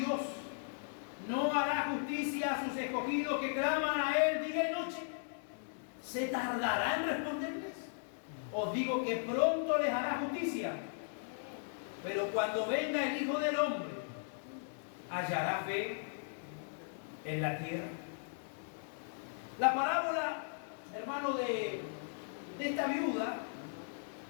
no hará justicia a sus escogidos que claman a Él día y noche? ¿Se tardará en responderles? Os digo que pronto les hará justicia. Pero cuando venga el Hijo del Hombre, ¿hallará fe en la tierra? La parábola, hermano, de esta viuda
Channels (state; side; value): silent; right; digital silence